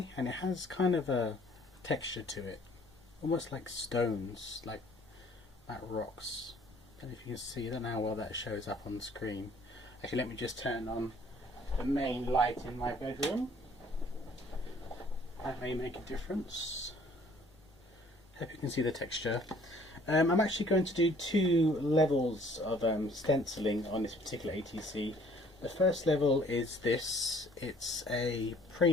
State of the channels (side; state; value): both; normal; correlation 0.57